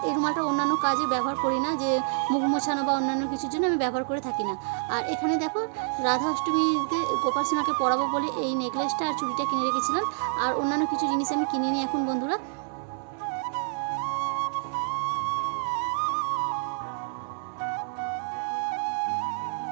এই রুমালটা অন্যান্য কাজে ব্যবহার করি না, যে মুখ মোছানো বা অন্যান্য কিছুর জন্য আমি ব্যবহার করে থাকি না। আর এখানে দেখো রাধা অষ্টমীতে গোপাল সোনাকে পরাবো বলে এই নেকলেসটা আর চুড়িটা কিনে রেখেছিলাম। আর অন্যান্য কিছু জিনিস আমি কিনে নিই এখন বন্ধুরা।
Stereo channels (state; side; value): silent; left; 60 dB below the other